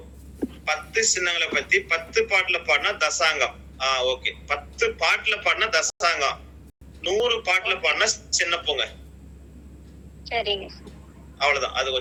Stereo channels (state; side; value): identical; both; correlation 1.00